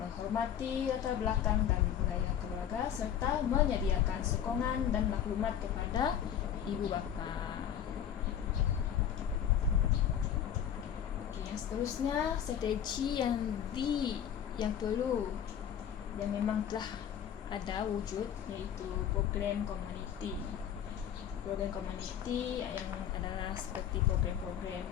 menghormati latar belakang dan budaya keluarga serta menyediakan sokongan dan maklumat kepada ibu bapa. Yang seterusnya, strategi yang perlu, yang memang telah ada wujud, iaitu program komuniti. Program komuniti yang adalah seperti program-program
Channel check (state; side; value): quieter; right; 9.4 dB